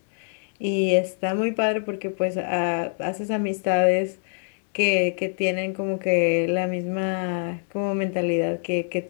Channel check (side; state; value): right; silent; digital silence